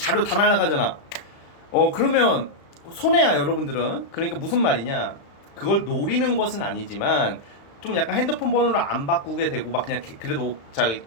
다 날라가잖아. 그러면 손해야 여러분들은. 그러니까 무슨 말이냐, 그걸 노리는 것은 아니지만 좀 약간 핸드폰 번호를 안 바꾸게 되고 막 그냥 그래도 잘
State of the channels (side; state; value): right; late; 35 ms